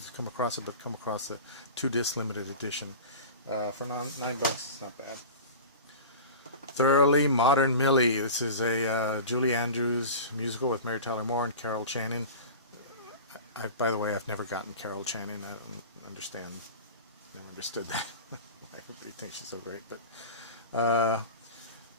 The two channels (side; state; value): both; inverted; correlation -0.33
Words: come across it, but come across the 2-disc limited edition for $9. It's not bad. Thoroughly Modern Millie. This is a Julie Andrews musical with Mary Tyler Moore and Carol Channing. By the way, I've never gotten Carol Channing. I don't understand. Never understood that. Everybody thinks she's so great, but